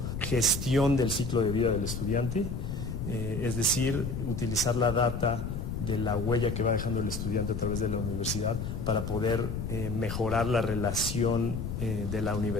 gestión del ciclo de vida del estudiante, es decir, utilizar la data de la huella que va dejando el estudiante a través de la universidad para poder mejorar la relación de la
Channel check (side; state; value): left; noise; rumble, 4 dB below the sound